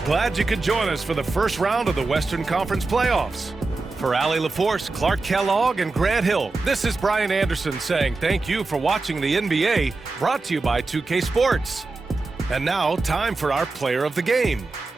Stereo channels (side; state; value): left; quieter; 3.6 dB